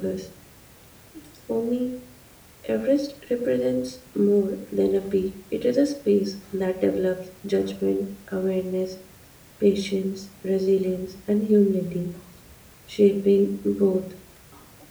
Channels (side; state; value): both; identical; correlation 1.00